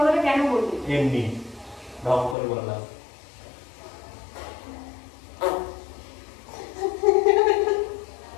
কেন বললি? এমনি ঢং করে বললাম।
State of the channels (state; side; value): drops out; right; at 2.4 s